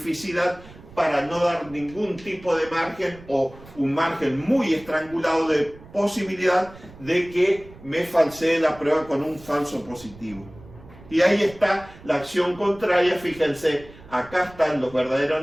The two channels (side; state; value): right; noise; rumble, 20 dB below the sound